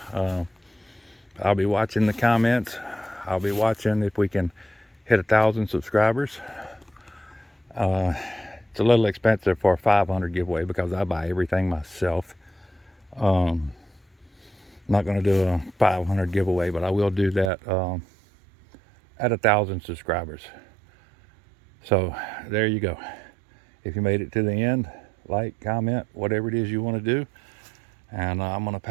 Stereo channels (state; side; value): drops out; left; at 17.5 s